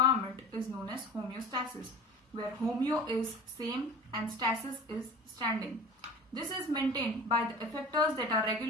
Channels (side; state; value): both; normal; correlation 0.37